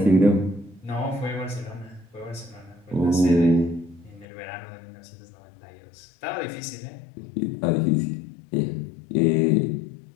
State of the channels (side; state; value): right; drops out; at 4.2 s